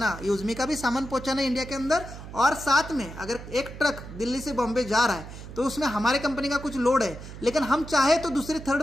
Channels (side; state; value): right; noise; hum, 13 dB below the sound